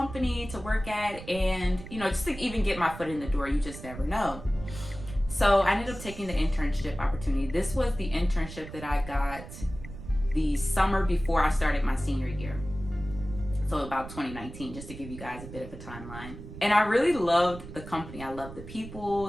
to work at, and just to even get my foot in the door, you just never know. So I ended up taking the internship opportunity. This was the internship that I got the summer before I started my senior year. So about 2019, just to give you guys a bit of a timeline. And I really loved the company. I loved the people.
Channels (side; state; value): right; noise; rumble, 12 dB below the sound